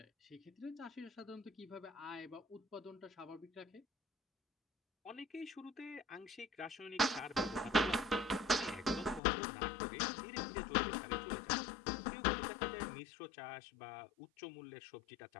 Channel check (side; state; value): right; drops out; at 9.2 s